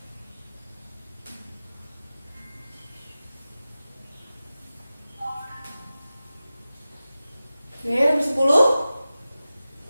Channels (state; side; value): inverted; both; correlation -0.95